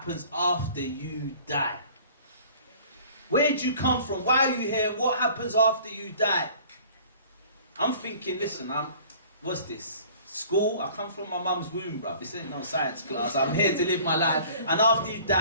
after you die? Where did you come from? Why are you here? And what happens after you die? I'm thinking, listen, what's this? School? I come from my mum's womb, bruv. This ain't no science class. I'm here to live my life. And after you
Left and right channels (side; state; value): both; inverted; correlation -0.49